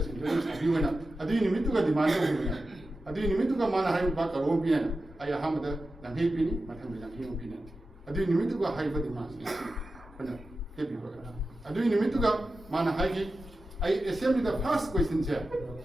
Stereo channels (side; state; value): both; normal; correlation 0.92